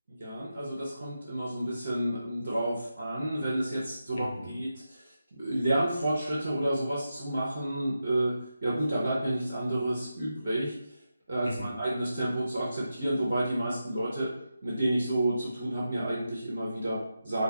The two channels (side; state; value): both; inverted; correlation -0.89